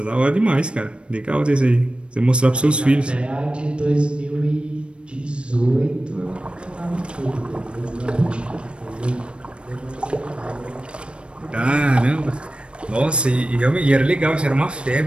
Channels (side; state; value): left; late; 0.057 ms